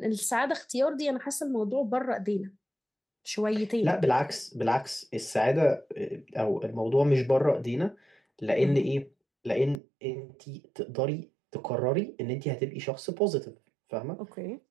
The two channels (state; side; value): drops out; left; at 9.8 s